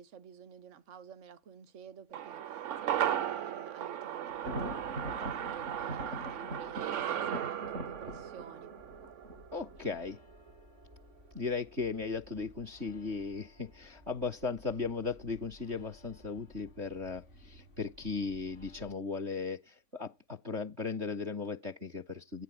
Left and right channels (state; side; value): late; left; 3.5 ms